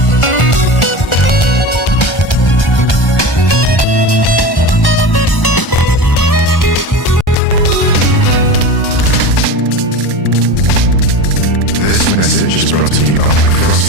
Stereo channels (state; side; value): normal; both; correlation 0.29